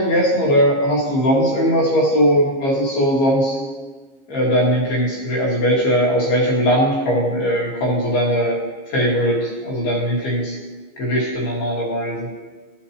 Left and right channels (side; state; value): right; late; 15 ms